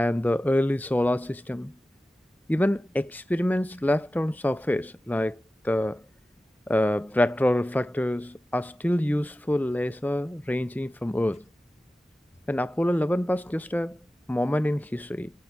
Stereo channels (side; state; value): both; normal; correlation 0.95